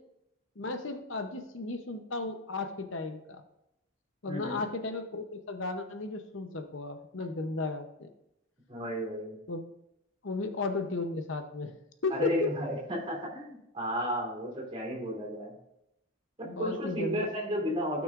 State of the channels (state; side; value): normal; both; correlation 0.16